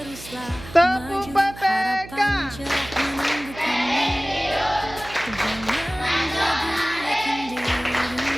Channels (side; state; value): right; noise; hum, 15 dB below the sound